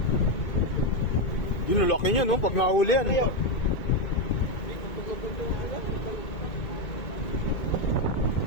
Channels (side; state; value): right; late; 2.2 ms